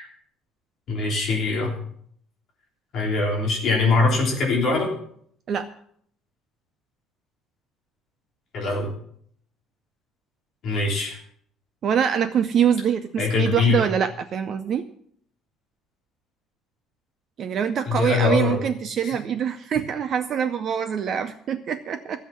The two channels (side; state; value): both; normal; correlation 0.57